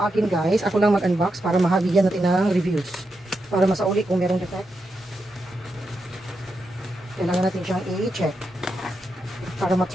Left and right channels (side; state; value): both; normal; correlation 0.86